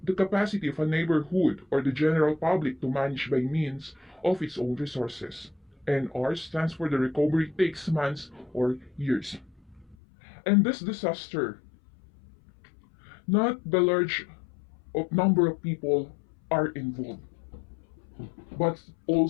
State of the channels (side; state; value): right; drops out; at 10.0 s